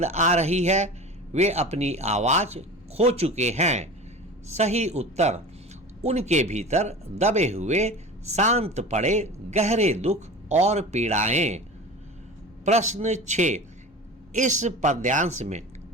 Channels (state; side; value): normal; both; correlation 0.34